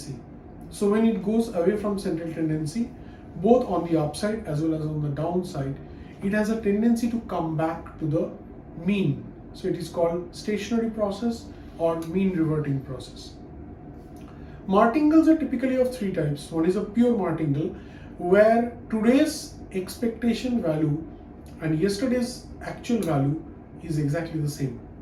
So when it goes away from central tendency, both on the upside as well as on the downside, it has a tendency to come back to the mean. So it is called stationary process or mean reverting process. Martingales are typically of three types. One is a pure martingale where today's expectation value and yesterday's actual value is exactly the same,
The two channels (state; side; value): identical; both; correlation 1.00